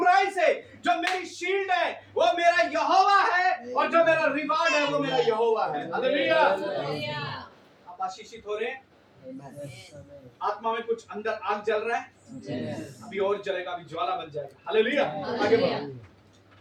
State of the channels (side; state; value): both; identical; correlation 1.00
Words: से, जो मेरी शील्ड है वो मेरा यहोवा है, और जो मेरा रिवार्ड है वो मेरा यहोवा है। हालेलुया। हालेलुया। आप आशीषित हो रहे हैं। Amen. आत्मा में कुछ अंदर आग जल रहा है, Yes. अभी और जलेगा, अभी ज्वाला बन जाएगा। हालेलुया। आगे बढ़ो।